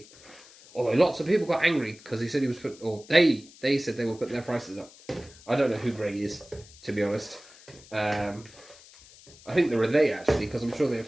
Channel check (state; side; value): noise; left; hiss, 22 dB below the sound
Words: Although lots of people got angry because he said he was putting, or they said they were putting their prices up. I don't know who Greg is, to be honest. I think there are they actually, because I'm sure they